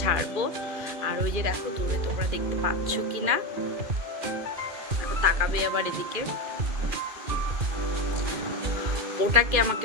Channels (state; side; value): late; left; 2.4 ms